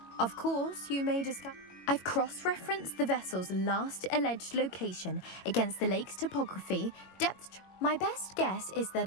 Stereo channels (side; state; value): right; late; 22 ms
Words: Of course, you may discuss... I've cross-referenced the vessel's last alleged location against the lake's topography, depth. My best guess is